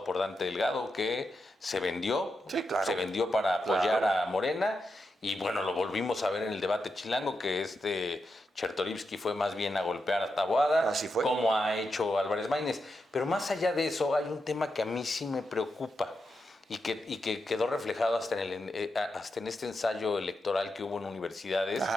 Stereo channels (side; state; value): both; normal; correlation 0.86